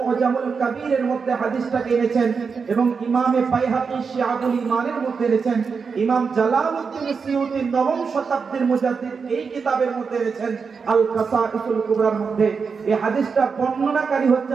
কবীরের মধ্যে হাদিসটা এনেছেন, এবং ইমামে বাইহাকী শিআবুল ঈমানের মধ্যে এনেছেন, ইমাম জালালউদ্দিন সিয়ুতী নবম শতাব্দীর মুজাদ্দিদ এই কিতাবের মধ্যে এনেছেন আল কাসাঈসুল কুবরার মধ্যে। এই হাদিসটা বর্ণনাকারী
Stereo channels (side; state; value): left; quieter; 5.4 dB